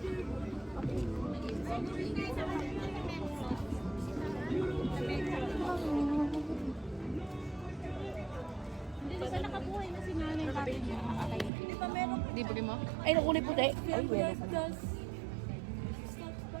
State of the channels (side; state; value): left; drops out; at 11.5 s